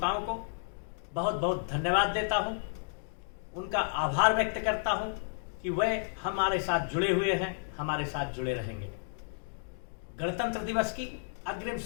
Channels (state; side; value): silent; right; digital silence